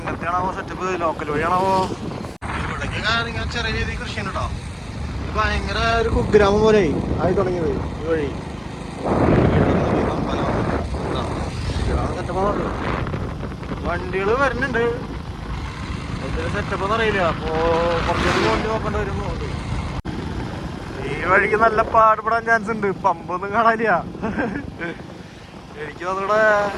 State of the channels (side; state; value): both; identical; correlation 1.00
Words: സെറ്റപ്പ്? ലോക്കൽ വഴിയാണാവോ? ഇവിടേക്ക് ഇങ്ങനെ ചെറിയ രീതിയിൽ കൃഷി ഉണ്ട് കേട്ടോ. ഭയങ്കര ഒരു കുഗ്രാമം പോലെ ആയി തുടങ്ങിയത് ഈ വഴി. വണ്ടികൾ വരുന്നുണ്ട്. എന്തൊരു സെറ്റപ്പ് എന്ന് അറിയില്ല. അപ്പോ കുറച്ചുകൂടി വണ്ടി നോക്കേണ്ടി വരും. ഈ വഴിക്ക് നല്ല പാടുപെടാൻ ചാൻസ് ഉണ്ട്. പമ്പൊന്നും കാണാനില്ല. എനിക്ക് തോന്നുകൂടെ